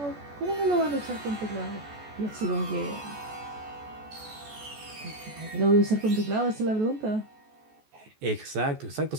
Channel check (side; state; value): left; late; 14 ms